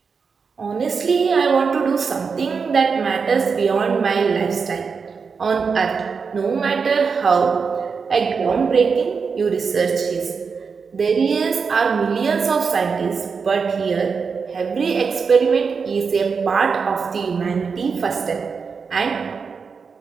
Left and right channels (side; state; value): left; quieter; 5.4 dB